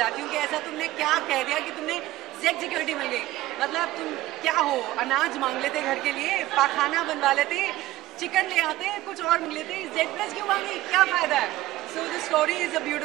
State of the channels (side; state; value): left; quieter; 16.4 dB